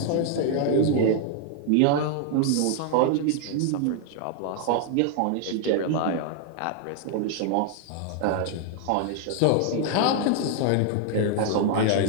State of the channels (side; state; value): both; different; correlation 0.00